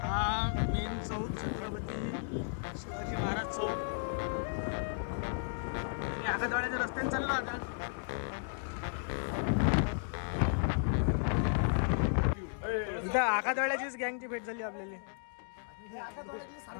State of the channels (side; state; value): right; silent; digital silence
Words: हा मेन चौक छत्रपती शिवाजी महाराज चौक. आकाशवाड्याच्या रस्त्याने चाललो आता. इथं आकाशवाड्याचीच गँगची भेट झाली आपल्याला.